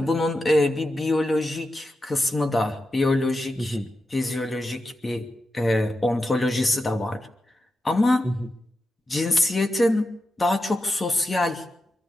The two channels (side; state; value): both; normal; correlation 0.89